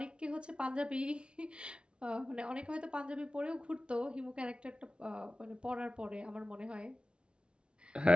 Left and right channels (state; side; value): late; left; 0.057 ms